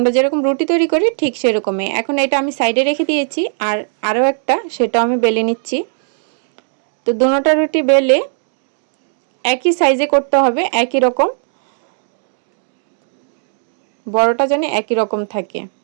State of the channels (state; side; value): silent; left; digital silence